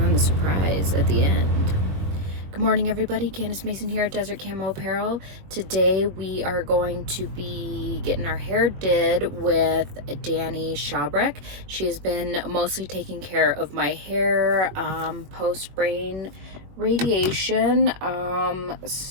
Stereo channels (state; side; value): late; left; 21 ms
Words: the surprise at the end. Good morning, everybody. Candace Mason here at Desert Camo Apparel. Today we are going to be getting our hair did with Dani Chabrek. She has been mostly taking care of my hair post-brain radiation.